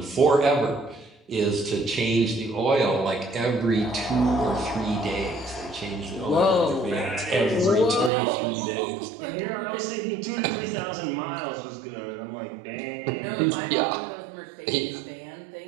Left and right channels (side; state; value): left; drops out; at 8.1 s